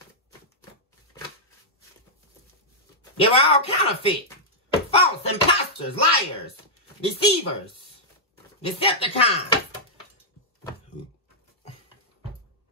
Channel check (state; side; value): normal; both; correlation -0.08